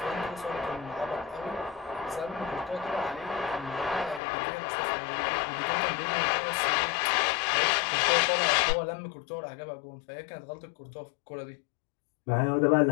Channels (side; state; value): right; drops out; at 4.2 s